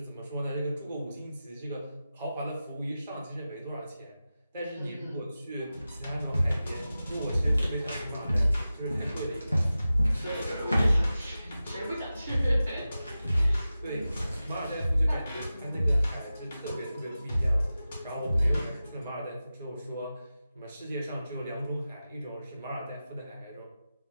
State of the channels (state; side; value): inverted; both; correlation -0.94